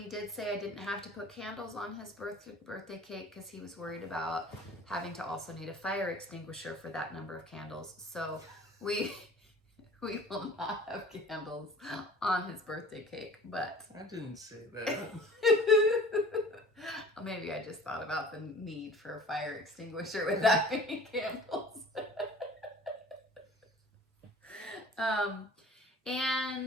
did say I didn't have to put candles on his birthday cake because he was worried about having to also need a fire extinguisher for that number of candles. So we will not have candles on his birthday cake, but I didn't say that. maybe I just thought about the need for a fire extinguisher with that many candles.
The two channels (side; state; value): both; normal; correlation 0.45